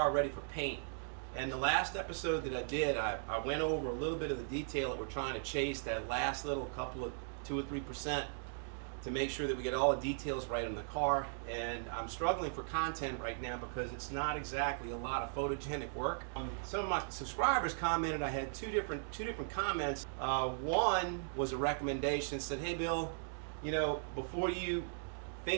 ready for paint. And the last episode that I did, I went over a little bit of the detail that we're trying to chase, that last little couple of 2 or 3%, to make sure that we get all the details right on the car. And I'm struggling for content right now because it's not exactly a lot of photogenic work. Some of my subscribers commented. I had two different comments. One was a recommendation, said, hey Bill, you know, before you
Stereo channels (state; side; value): silent; left; digital silence